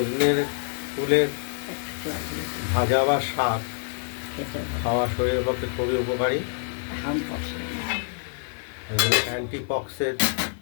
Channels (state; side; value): silent; right; digital silence